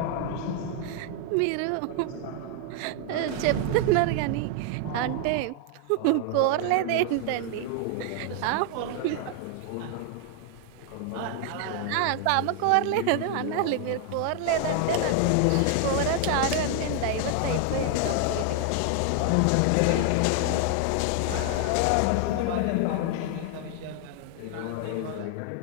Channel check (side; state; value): both; different; correlation 0.00